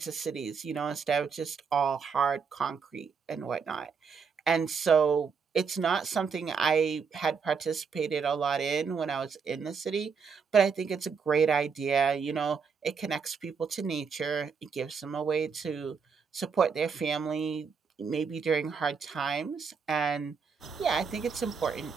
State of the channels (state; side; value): quieter; left; 5.8 dB